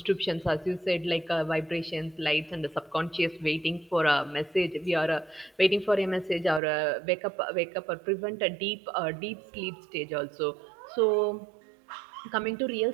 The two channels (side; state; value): left; drops out; at 6.6 s